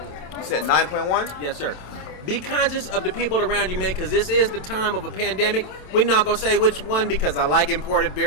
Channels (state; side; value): late; right; 27 ms